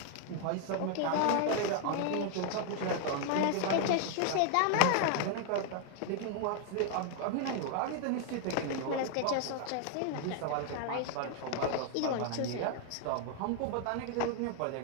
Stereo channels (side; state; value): both; different; correlation 0.00